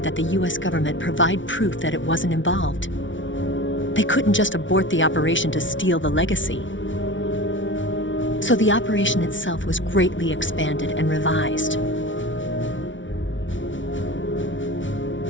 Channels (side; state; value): right; late; 0.56 ms